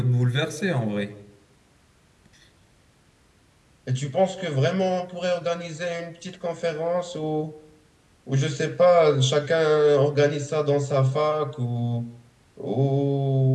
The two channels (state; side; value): identical; both; correlation 1.00